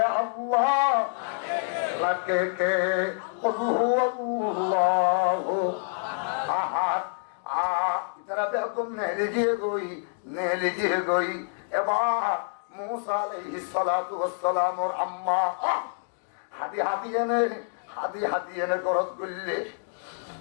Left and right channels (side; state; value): right; silent; digital silence